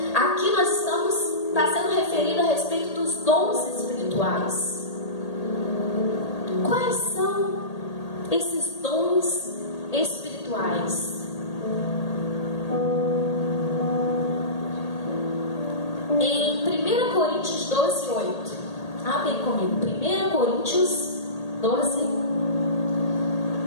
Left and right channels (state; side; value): late; right; 1.8 ms